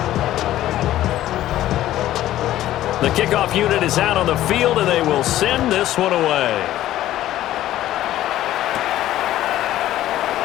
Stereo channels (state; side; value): quieter; right; 13.7 dB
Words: 3. The kickoff unit is out on the field, and they will send this one away.